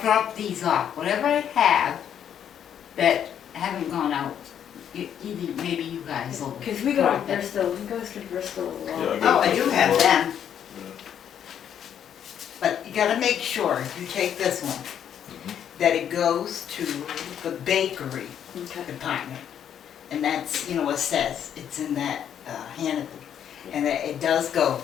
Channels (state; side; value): quieter; right; 9.2 dB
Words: drop these off. Whatever I have that haven't gone out, either, maybe you guys will. Cause we go to drop it. Bristol, he goes to Bristol a lot. Yeah, I Oh, got I do Bristol have Road. them. but you gotta make sure, if you take this one, that it goes to the bakery Okay. department. And that's, you know, it says, it's in that, Hannaford, and that it does go